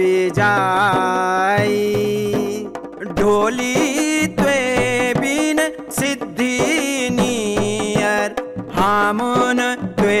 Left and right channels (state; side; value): identical; both; correlation 1.00